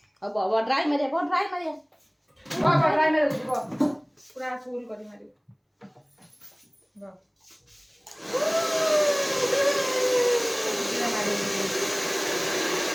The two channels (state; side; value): identical; both; correlation 1.00